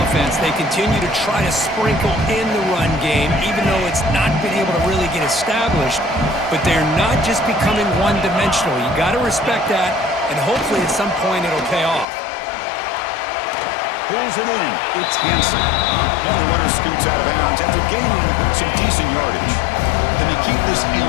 They continue to try to sprinkle in the run game, even though it's not been able to really get established. But they're not just becoming one-dimensional. You got to respect that, and hopefully at some point it'll pay off. Pulls it in. It's Hansen. And the runner scoots out of bounds after gaining some decent yardage. Then they keep this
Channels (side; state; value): right; drops out; at 12.1 s